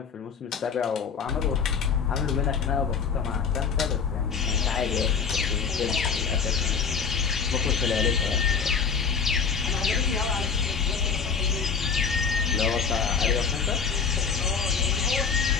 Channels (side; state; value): right; quieter; 6.1 dB